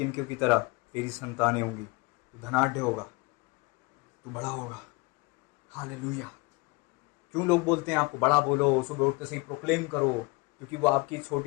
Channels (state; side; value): quieter; right; 26.3 dB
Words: की तरह तेरी संतानें होंगी, तू धनाढ्य होगा, तू बड़ा होगा। हालेलुया। क्यों लोग बोलते हैं आपको बड़ा बोलो, सुबह उठते से ही प्रोक्लेम करो? क्योंकि वो आपकी